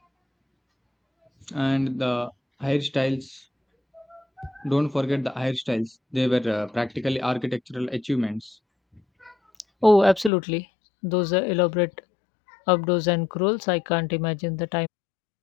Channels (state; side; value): drops out; right; at 10.3 s